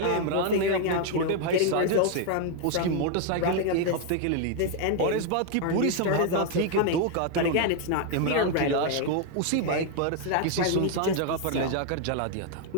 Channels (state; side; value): different; both; correlation 0.00